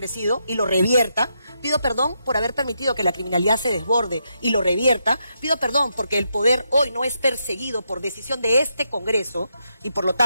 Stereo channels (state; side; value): inverted; both; correlation -0.81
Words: y lo revierta, pido perdón por haber permitido que la criminalidad se desborde y lo revierta, pido perdón porque el poder hoy no es perseguido por decisión de este Congreso y por lo